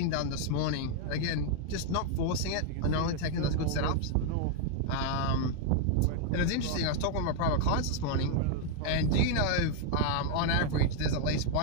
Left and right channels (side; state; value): both; different; correlation 0.00